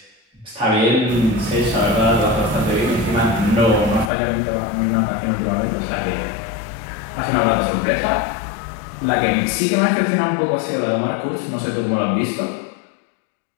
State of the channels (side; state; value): right; drops out; at 4.1 s